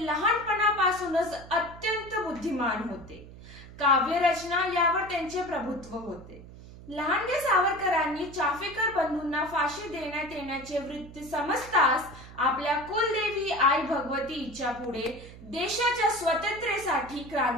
लहानपणापासूनच अत्यंत बुद्धिमान होते। काव्यरचना यावर त्यांचे प्रभुत्व होते। लहानगे सावरकरांनी चाफेकर बंधूंना फाशी देण्यात येण्याचे वृत्त समजताच आपल्या कुलदेवी आई भगवती हिच्या पुढे देशाच्या स्वातंत्र्यासाठी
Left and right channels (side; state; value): right; noise; hum, 17 dB below the sound